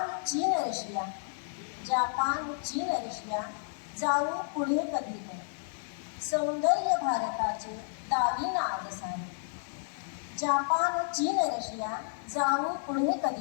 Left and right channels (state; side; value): silent; right; digital silence